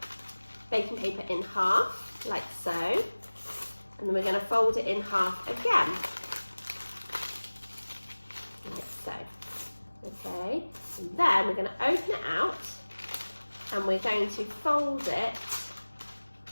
baking paper in half, like so. And then we're going to fold it in half again, like so. Okay, and then we're going to open it out and we're going to fold it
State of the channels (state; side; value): inverted; both; correlation -1.00